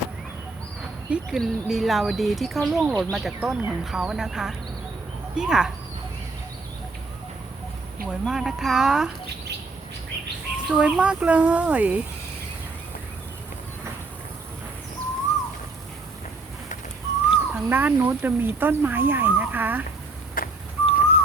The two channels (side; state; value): left; quieter; 3.5 dB